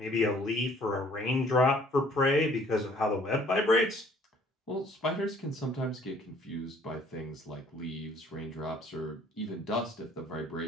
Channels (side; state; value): both; normal; correlation 0.58